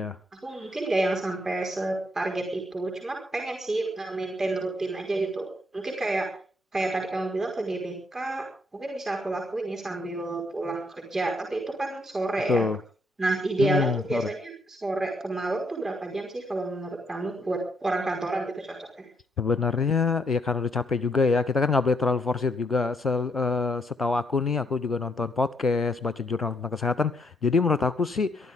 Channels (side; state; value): both; normal; correlation 0.74